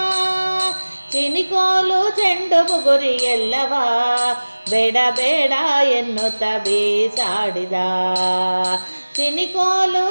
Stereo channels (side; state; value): both; inverted; correlation -1.00